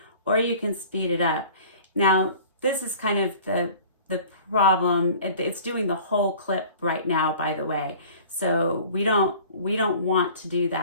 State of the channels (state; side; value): inverted; both; correlation -0.45